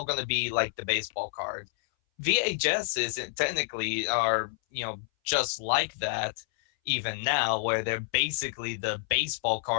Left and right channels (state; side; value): silent; right; 59 dB below the other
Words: be like the baseball card. VHSs technically are just like that even now, where they're basically the baseball